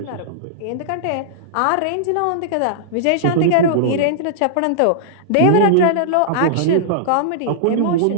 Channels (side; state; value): both; different; correlation -0.02